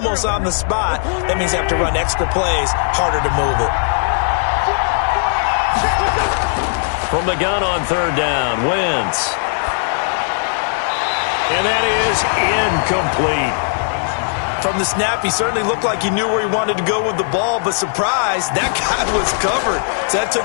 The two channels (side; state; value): right; silent; digital silence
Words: on the spot. That means they have to run extra plays, harder to move it. From the gun on 3rd down, Wentz. And that is incomplete. From the snap, he certainly looked like he knew where he wanted to go with the ball, but surprise, that guy was covered. So that took